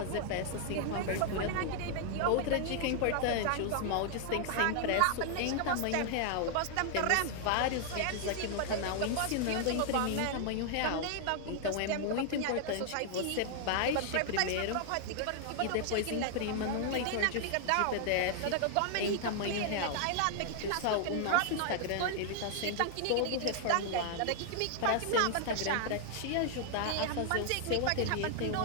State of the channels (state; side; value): different; both; correlation 0.00